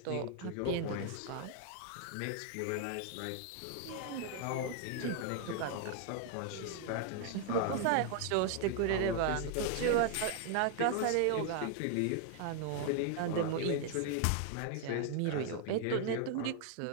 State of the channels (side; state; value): both; different; correlation 0.00